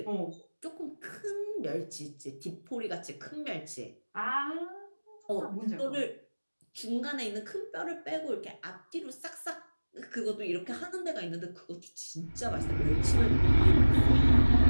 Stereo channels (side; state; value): both; inverted; correlation -1.00